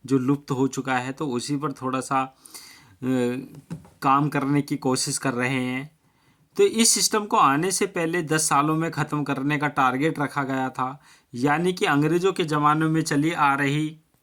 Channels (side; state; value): both; identical; correlation 1.00